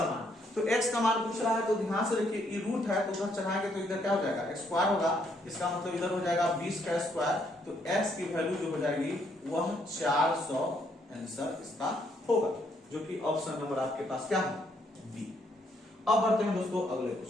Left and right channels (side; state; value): both; normal; correlation 0.71